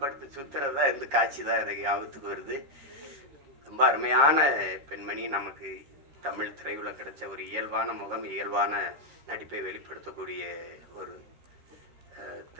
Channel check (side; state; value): left; late; 13 ms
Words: சுத்துறதா இருந்து காட்சி தான் எனக்கு ஞாபகத்துக்கு வருது. ரொம்ப அருமையான பெண்மணி. நமக்கு தமிழ் திரையுல கிடைச்ச ஒரு இயல்பான முகம், இயல்பான நடிப்பை வெளிப்படுத்தக்கூடிய ஒரு